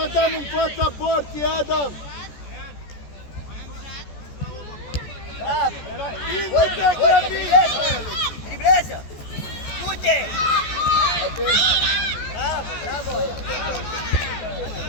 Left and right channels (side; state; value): right; late; 14 ms